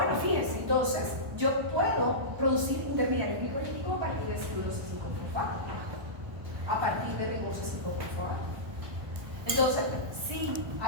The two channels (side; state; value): left; late; 1.1 ms